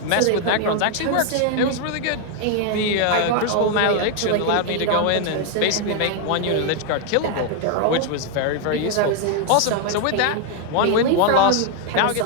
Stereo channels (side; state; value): both; different; correlation 0.00